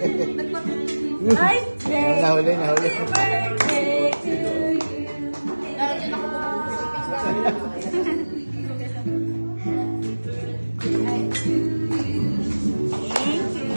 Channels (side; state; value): both; inverted; correlation -1.00